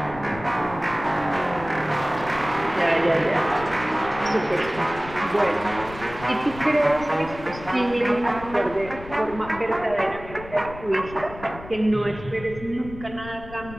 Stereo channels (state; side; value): noise; left; rumble, 15 dB below the sound